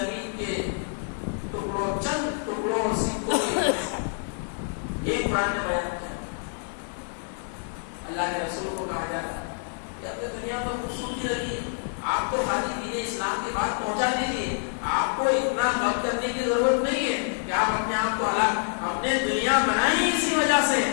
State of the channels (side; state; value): right; silent; 60 dB below the other